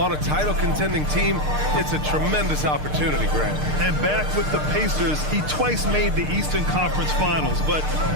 a title-contending team, it's a tremendous opportunity, Grant. And back with the Pacers, he twice made the Eastern Conference Finals. But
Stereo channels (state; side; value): late; left; 6.6 ms